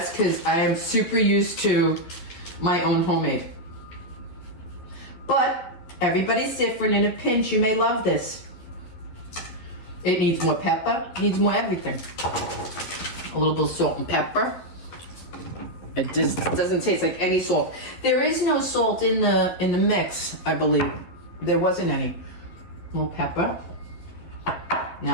because I am super used to my own homemade. But everybody's different. In a pinch, you may love this. It needs more pepper. Needs more everything. A little bit of salt and pepper. It just doesn't taste like any salt. There is no salt in the mix, I believe. There wasn't any. A little pepper. Now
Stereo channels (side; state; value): right; late; 12 ms